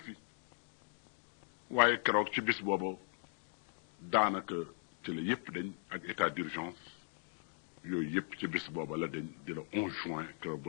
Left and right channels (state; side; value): silent; right; 52 dB below the other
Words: waaye keroog ci bis booba daanaka ci la yépp dañ ak état d'urgence yooyu yépp ci bis booba la dañ di la 11 juin keroog ba